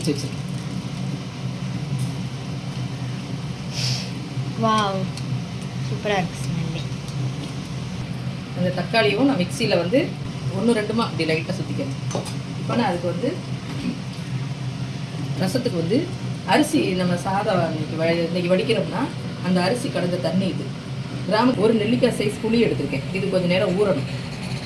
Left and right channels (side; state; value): both; identical; correlation 1.00